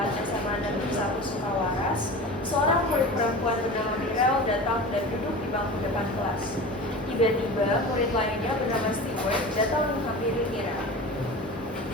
SMA Negeri 1 Sukawaras, seorang murid perempuan bernama Mirel datang dan duduk di bangku depan kelas. Tiba-tiba murid lainnya bernama Stewart datang menghampiri Mirel.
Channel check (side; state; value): both; normal; correlation 0.33